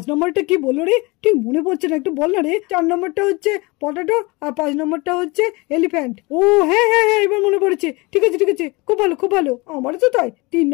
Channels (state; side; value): quieter; right; 25.2 dB